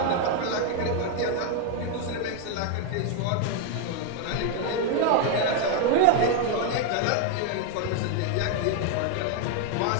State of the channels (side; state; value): both; different; correlation 0.01